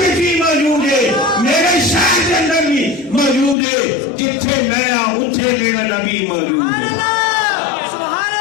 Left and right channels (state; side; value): drops out; right; at 3.6 s